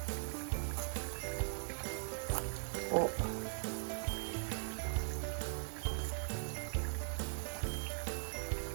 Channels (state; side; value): silent; left; digital silence